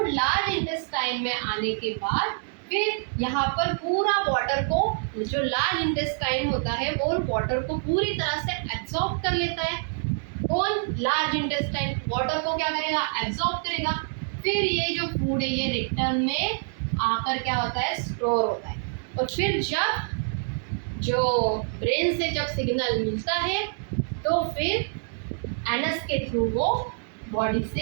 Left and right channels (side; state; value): left; silent; digital silence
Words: लार्ज इंटेस्टाइन में आने के बाद फिर यहाँ पर पूरा वाटर को, जो लार्ज इंटेस्टाइन होता है वो वाटर को पूरी तरह से एब्जॉर्ब कर लेता है। कौन, लार्ज इंटेस्टाइन वाटर को क्या करेगा, एब्जॉर्ब करेगा। फिर ये जो फूड है ये रिटर्न में आकर क्या होता है, स्टोर होता है। और फिर जब जो ब्रेन से जब सिग्नल मिलता है तो फिर एनस के थ्रू वो बॉडी